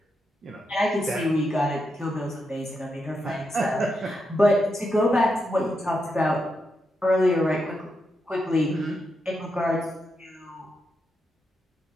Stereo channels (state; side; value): normal; both; correlation 0.84